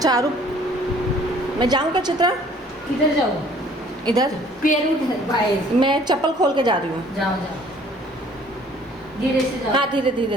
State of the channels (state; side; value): normal; both; correlation 0.56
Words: आरू, मैं जाऊँ क्या चित्रा? किधर जाओ? इधर पैर उधर बाहर। मैं चप्पल खोल के जा रही हूँ। जाओ जाओ, धीरे से जाओ। हाँ धीरे